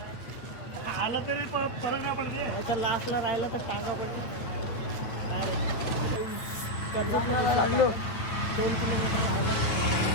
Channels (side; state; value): right; late; 8.8 ms